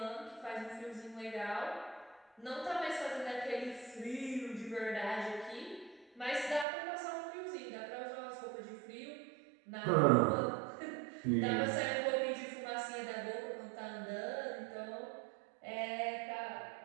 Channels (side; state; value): left; drops out; at 6.7 s